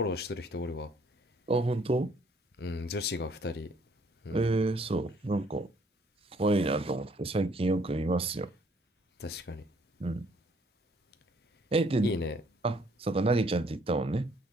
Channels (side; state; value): both; normal; correlation 0.63